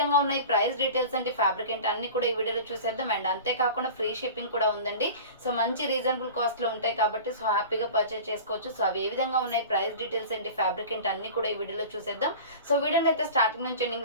ఉన్నాయి, ప్రైస్ డీటెయిల్స్ అంటే ఫ్యాబ్రిక్ ఏంటి అన్ని కూడా ఈ వీడియోలో చూసేద్దాం. అండ్ అంతేకాకుండా ఫ్రీ షిప్పింగ్ కూడా ఉందండి. సో మంచి రీజనబుల్ కాస్ట్లో ఉంటాయి కాబట్టి సో హ్యాపీగా పర్చేస్ చేసుకోవచ్చు. సో అవి ఏ విధంగా ఉన్నాయి, ప్రైస్ డీటెయిల్స్ ఏంటి, ఫ్యాబ్రిక్ ఏంటి అన్ని కూడా ఈ వీడియోలో చూసేద్దాం. సో వీడియోని అయితే స్టార్టింగ్ నుంచి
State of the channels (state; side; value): inverted; both; correlation -0.36